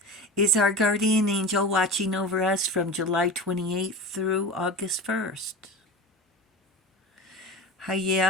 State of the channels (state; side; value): normal; both; correlation 0.30